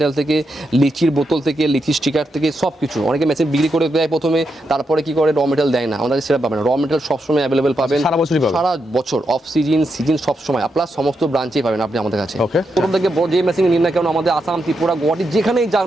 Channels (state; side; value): normal; both; correlation 0.84